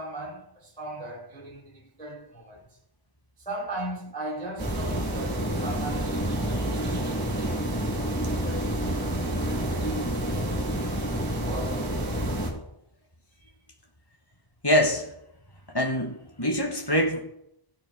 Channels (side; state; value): right; late; 1.0 ms